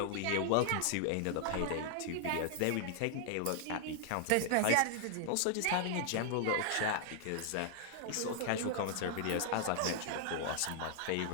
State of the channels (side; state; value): both; different; correlation 0.00